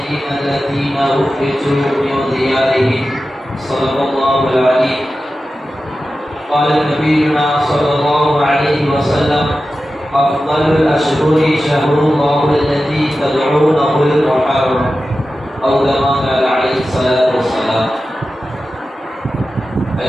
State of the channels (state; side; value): normal; both; correlation 0.93